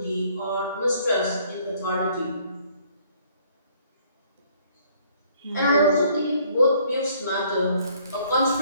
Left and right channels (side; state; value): both; inverted; correlation -0.62